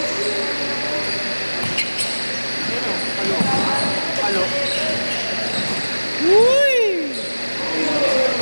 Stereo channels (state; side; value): inverted; both; correlation -1.00